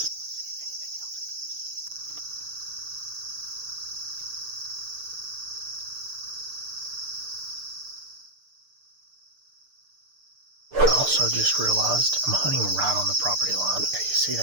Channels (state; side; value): late; left; 6.7 ms